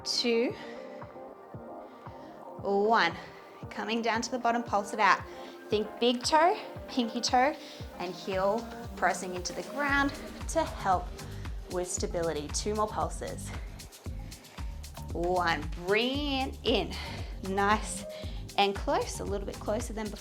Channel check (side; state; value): both; identical; correlation 1.00